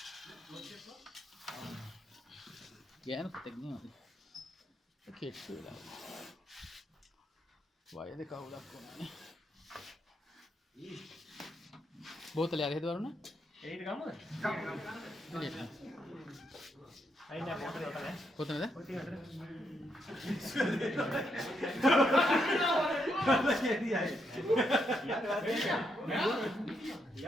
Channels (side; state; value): both; normal; correlation 0.79